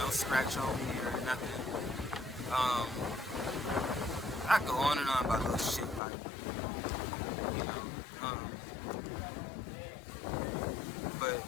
scratch on me or nothing. I go on and on about little shit like, you know, but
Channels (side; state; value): right; drops out; at 6.0 s